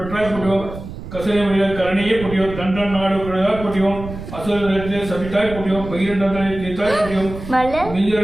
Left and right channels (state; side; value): noise; right; rumble, 11 dB below the sound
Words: பொடியோம் கசனை வழியாக கரணியே பொடியோம் தண்டன் நாடு விழுதாய் பொடியோம் அசுர நிலத்திலே சபித்தாய் பொடியோம் பகிரண்டனை தீர்த்தாய் பொடியோம் மிஞ்சிர